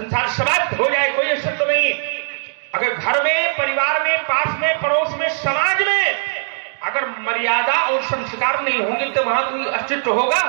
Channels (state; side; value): silent; left; digital silence